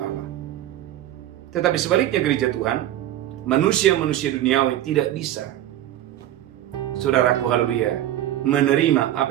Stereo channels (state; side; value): quieter; left; 12.9 dB